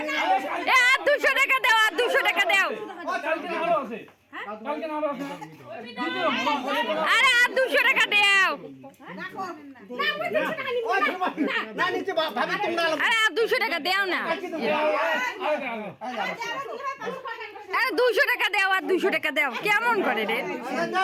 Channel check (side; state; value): both; identical; correlation 1.00